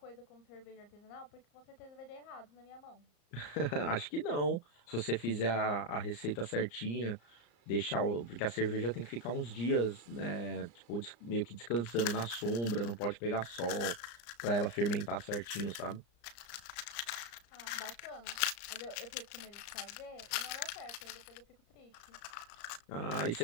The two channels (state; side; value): late; right; 34 ms